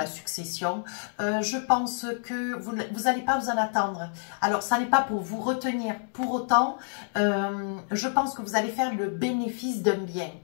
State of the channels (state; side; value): silent; right; digital silence